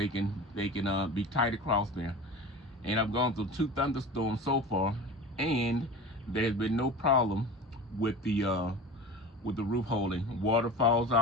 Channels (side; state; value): both; normal; correlation 0.34